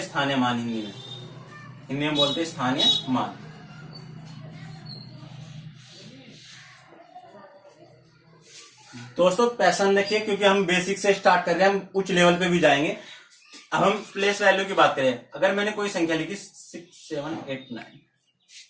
स्थानीय मान। हिंदी में बोलते हैं स्थानीय मान। दोस्तों पैसन देखिए, क्योंकि हम बेसिक से स्टार्ट कर रहे हैं, हम उच्च लेवल पे भी जाएंगे। अब हम प्लेस वैल्यू की बात करें। अगर मैंने कोई संख्या लिखी 6 7 8 9,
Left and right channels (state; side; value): identical; both; correlation 1.00